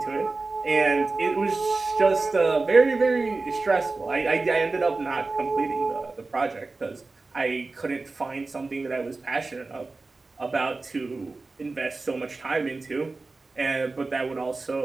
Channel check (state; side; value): quieter; left; 3.6 dB